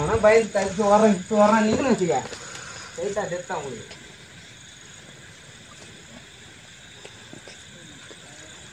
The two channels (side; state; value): both; identical; correlation 1.00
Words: பயந்து தடுத்து வர்றேன் நீங்களும் வச்சுக்க ரைட்டா டெத்தா உங்களுக்கு